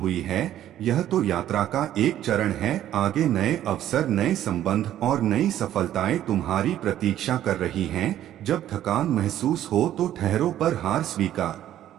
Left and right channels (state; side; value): quieter; left; 12.0 dB